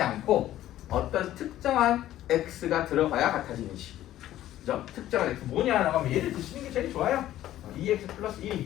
않고 어떤 특정한 x가 들어가야 같아지는 식. 그죠? 특정한 x 뭐냐라고 하면 얘를 드시는 게 제일 좋아요. 2x 플러스 1이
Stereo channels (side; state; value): right; quieter; 13.4 dB